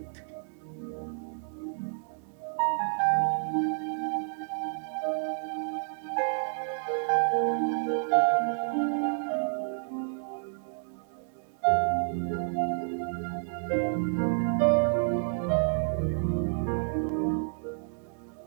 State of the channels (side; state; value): left; silent; digital silence